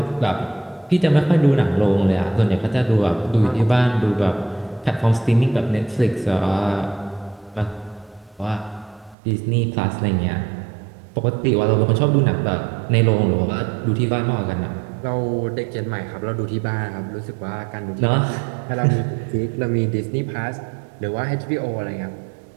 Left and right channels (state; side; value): drops out; left; at 9.2 s